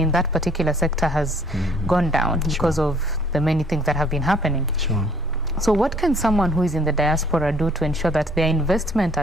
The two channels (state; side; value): normal; both; correlation 0.59